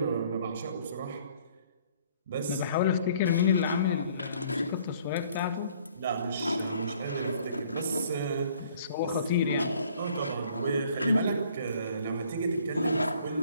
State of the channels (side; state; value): both; inverted; correlation -0.59